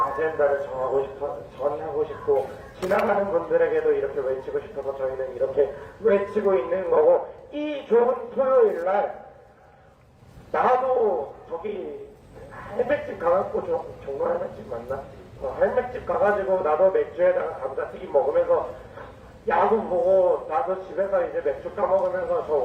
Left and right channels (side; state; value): both; identical; correlation 1.00